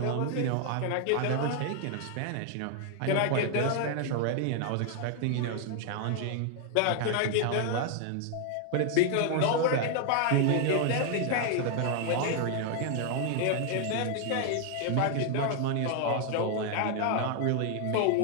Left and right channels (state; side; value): different; both; correlation 0.00